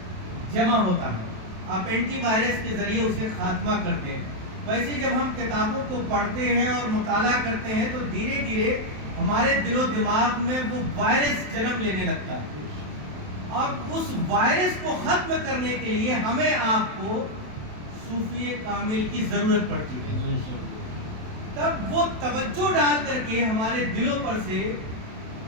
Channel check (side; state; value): left; late; 27 ms